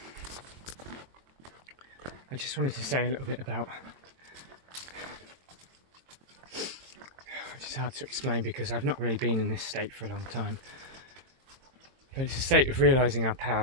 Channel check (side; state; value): left; late; 23 ms